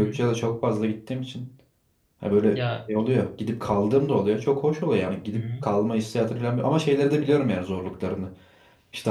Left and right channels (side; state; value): both; identical; correlation 1.00